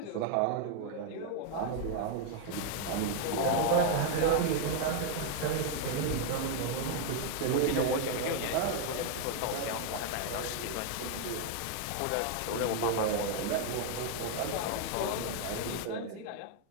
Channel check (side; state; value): both; different; correlation 0.00